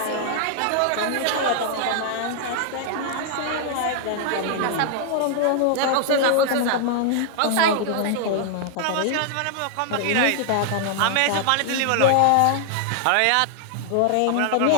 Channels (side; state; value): both; different; correlation -0.01